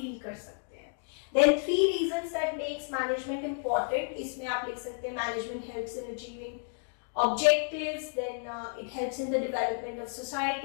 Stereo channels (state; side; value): silent; right; 57 dB below the other